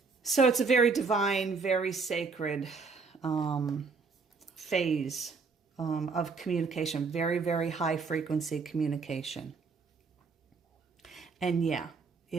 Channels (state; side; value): quieter; left; 4.8 dB